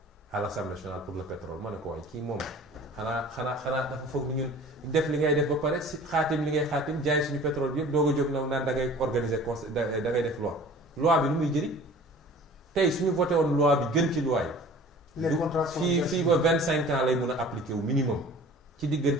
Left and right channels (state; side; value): normal; both; correlation 0.45